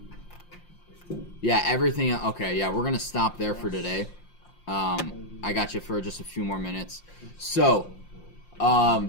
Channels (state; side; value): late; right; 5.7 ms